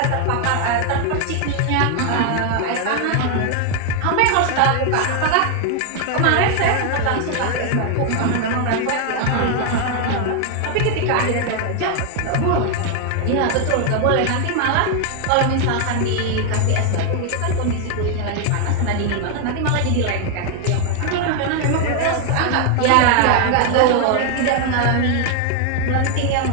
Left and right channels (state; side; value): different; both; correlation 0.00